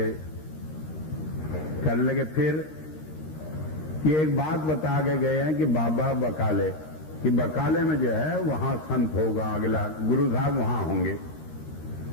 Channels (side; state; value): right; late; 13 ms